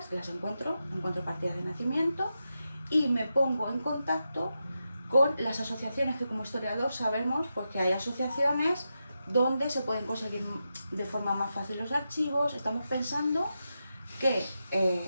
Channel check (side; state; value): both; inverted; correlation -0.88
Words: las encuentro partidas de nacimiento y me pongo en contacto con las asociaciones, que como historiador sabemos pues que hay asociaciones donde se pueden conseguir de forma más fácil los archivos. Estamos pensando que